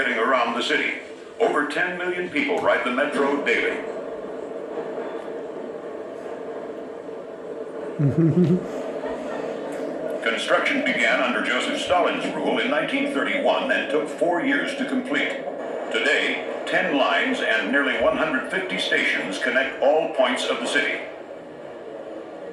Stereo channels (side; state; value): both; identical; correlation 1.00